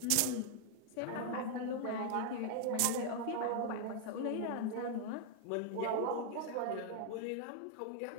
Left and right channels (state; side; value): different; both; correlation 0.00